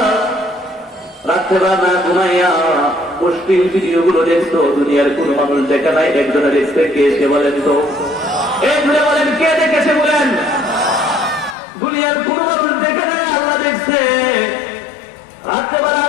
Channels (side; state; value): right; drops out; at 11.6 s